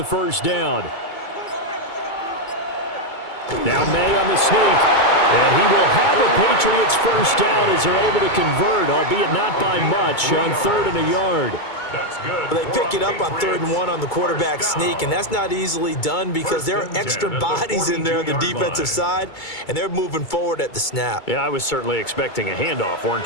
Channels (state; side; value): late; right; 2.3 ms